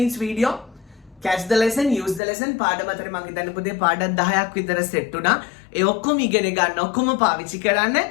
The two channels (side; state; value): right; drops out; at 2.2 s